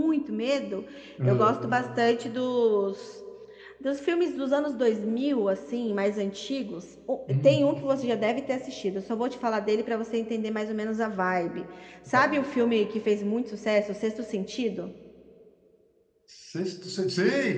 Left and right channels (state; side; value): identical; both; correlation 1.00